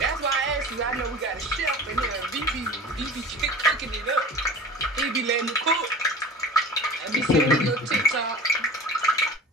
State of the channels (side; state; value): both; normal; correlation 0.38